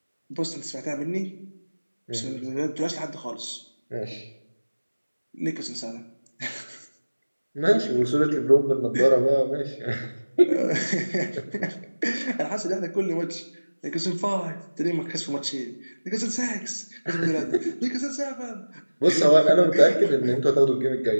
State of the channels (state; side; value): inverted; both; correlation -1.00